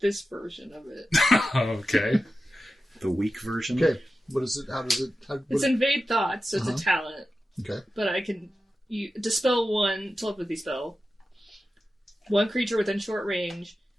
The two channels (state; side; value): normal; both; correlation 0.92